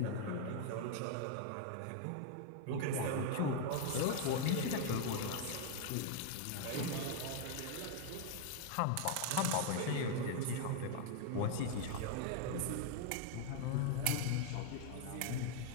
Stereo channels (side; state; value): both; different; correlation 0.00